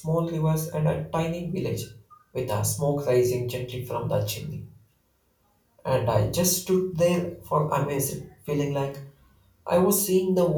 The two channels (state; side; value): identical; both; correlation 1.00